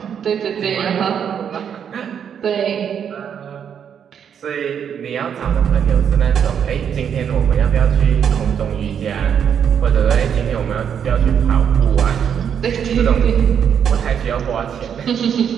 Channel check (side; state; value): left; quieter; 8.1 dB